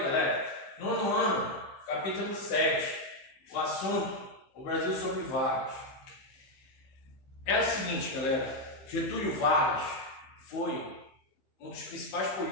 galera, nono ano, capítulo 7, o assunto, o Brasil sob Vargas. É o seguinte, galera, Getúlio Vargas foi um dos principais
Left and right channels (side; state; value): right; late; 15 ms